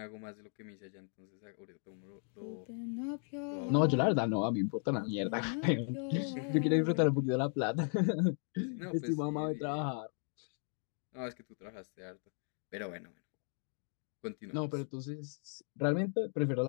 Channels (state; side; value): silent; right; 53 dB below the other